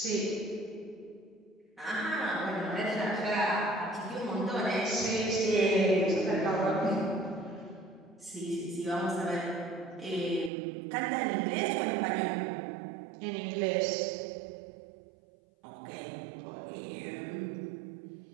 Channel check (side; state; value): left; drops out; at 10.5 s